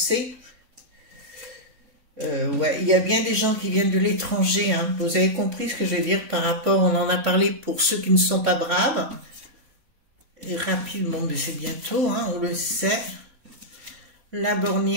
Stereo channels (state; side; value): late; left; 3.5 ms